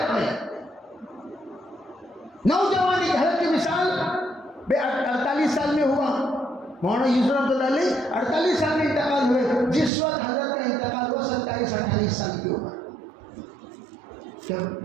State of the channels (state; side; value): drops out; left; at 9.9 s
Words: میں، نوجوانی کی حالت کی وصال 48 سال میں ہوا. مولانا یوسف رحمۃ اللہ علیہ 48 سال میں انتقال ہوئے. جس وقت حضرت کا انتقال ہوا 27-28 سال کی عمر.